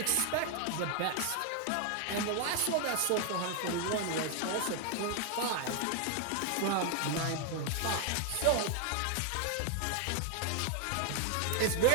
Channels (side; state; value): both; different; correlation 0.00